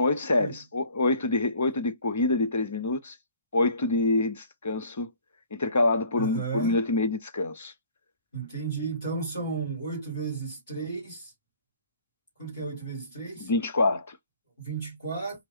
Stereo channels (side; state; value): both; inverted; correlation -0.52